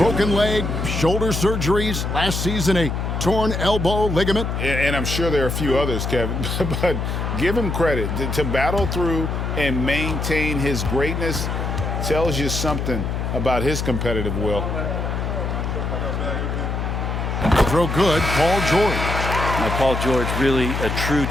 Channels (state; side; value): noise; left; hum, 2 dB below the sound